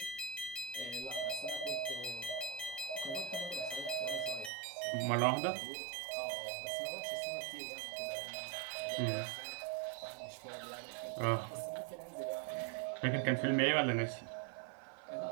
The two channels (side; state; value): left; drops out; at 4.5 s